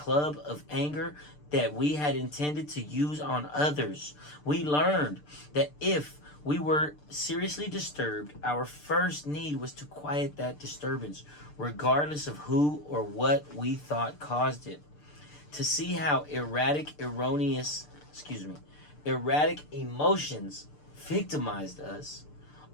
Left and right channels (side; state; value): right; late; 6.7 ms